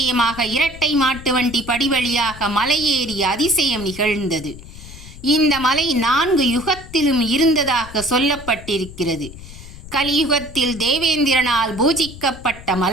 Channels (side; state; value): left; noise; rumble, 15 dB below the sound